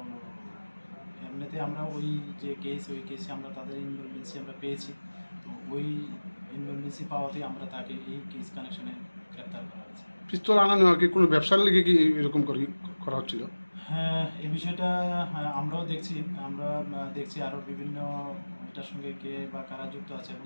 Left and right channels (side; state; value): both; inverted; correlation -1.00